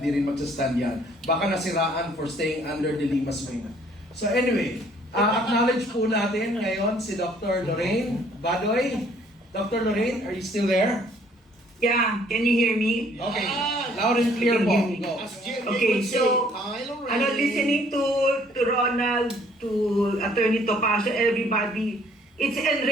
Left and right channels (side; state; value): both; normal; correlation 0.61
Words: rin magsastand yan. Baka nasiraan for staying under the Lima's wing. So anyway, acknowledge po natin ngayon si Dr. Lorraine Badoy. Dr. Lorraine, are you still there? Yeah, can you hear me? Okay, loud and clear po. Go. As Jimmy Okay, would say, so, Kylo listening to Ronald, to Attorney Topacio, everybody, it's